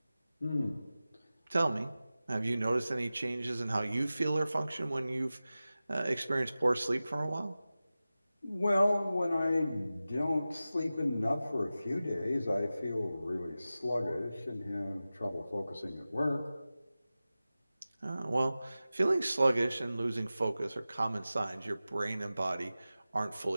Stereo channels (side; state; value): both; inverted; correlation -0.95